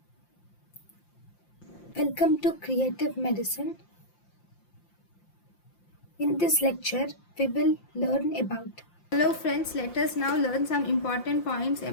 welcome to Creative Medicine. In this lecture, we will learn about. Hello friends, let us now learn some important points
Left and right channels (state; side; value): late; right; 5.7 ms